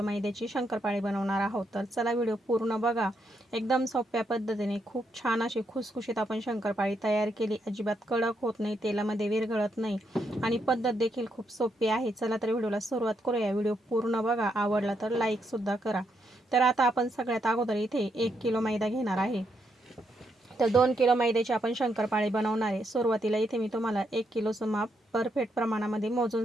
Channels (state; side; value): normal; both; correlation 0.78